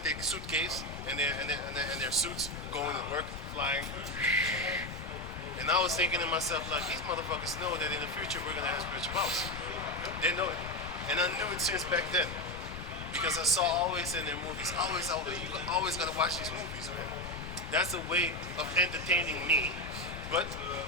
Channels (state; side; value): noise; left; rumble, 9 dB below the sound